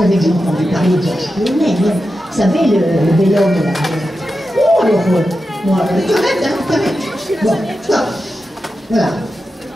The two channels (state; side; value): normal; both; correlation 0.90